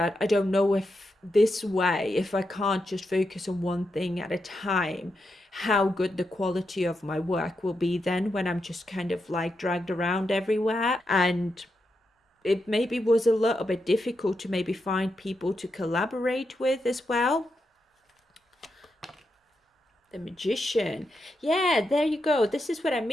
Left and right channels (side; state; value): both; normal; correlation 0.85